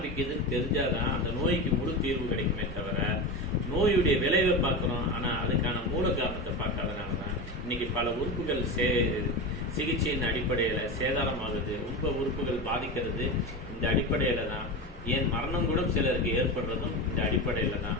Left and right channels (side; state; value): both; normal; correlation 0.22